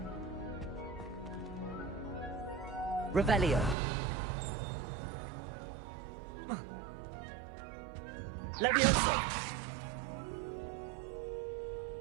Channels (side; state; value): left; drops out; at 3.8 s